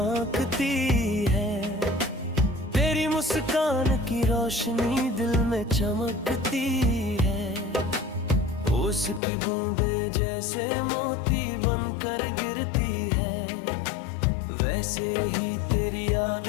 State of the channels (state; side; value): drops out; right; at 9.2 s